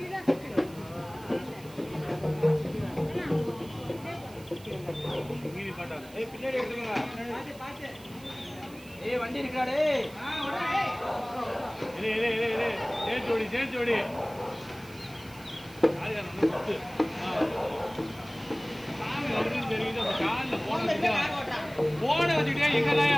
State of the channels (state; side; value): noise; right; hiss, 22 dB below the sound